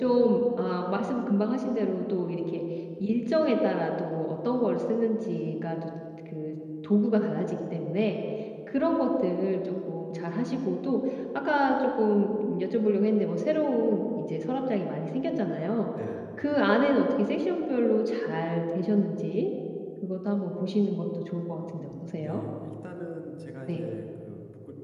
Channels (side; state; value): both; identical; correlation 1.00